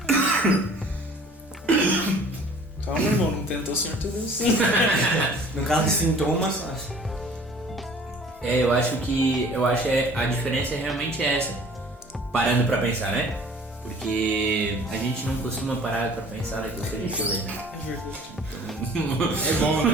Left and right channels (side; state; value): both; normal; correlation 0.50